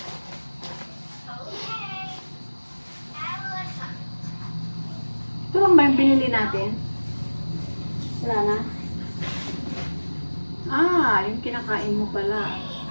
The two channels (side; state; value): both; inverted; correlation -1.00